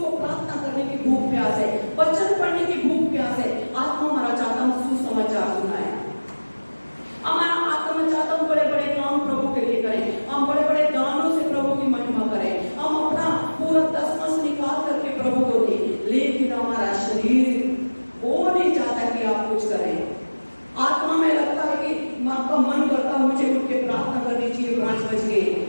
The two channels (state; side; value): inverted; both; correlation -1.00